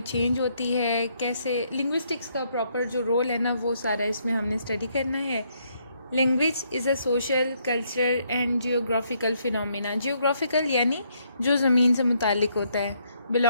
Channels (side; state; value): both; inverted; correlation -0.72